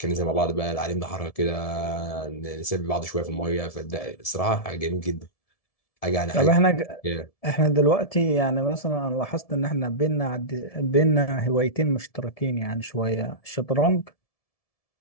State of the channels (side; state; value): right; late; 1.7 ms